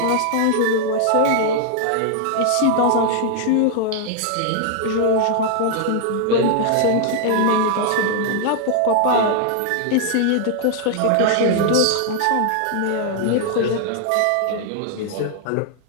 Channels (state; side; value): different; both; correlation 0.00